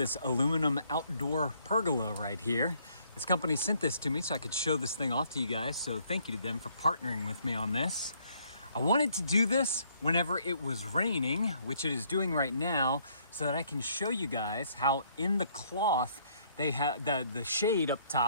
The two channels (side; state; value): both; inverted; correlation -0.66